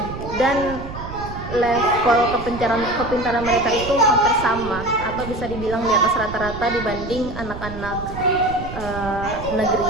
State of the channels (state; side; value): noise; right; rumble, 10 dB below the sound